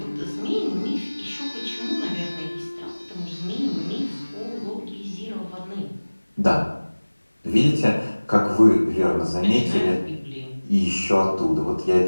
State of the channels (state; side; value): inverted; both; correlation -1.00